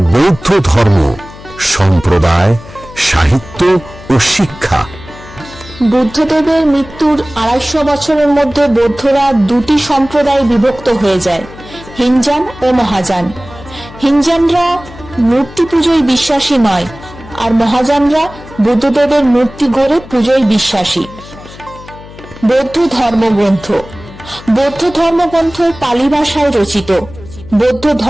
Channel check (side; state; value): left; noise; hum, 18 dB below the sound